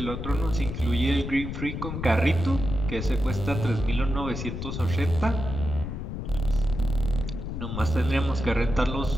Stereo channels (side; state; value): left; noise; rumble, 5 dB below the sound